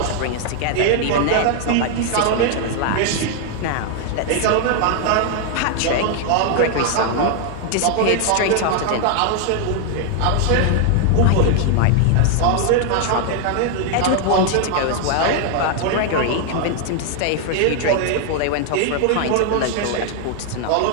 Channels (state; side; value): different; both; correlation 0.00